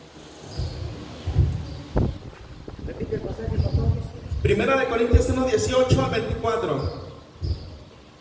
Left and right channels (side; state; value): both; identical; correlation 1.00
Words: 18 al 24.